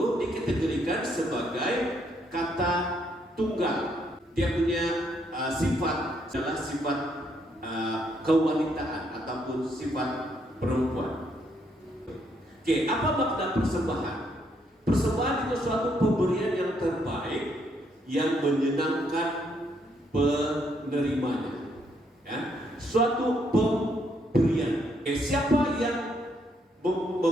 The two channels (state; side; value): normal; both; correlation 0.73